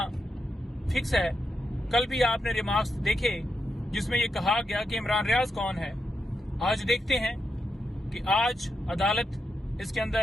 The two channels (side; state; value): both; normal; correlation 0.85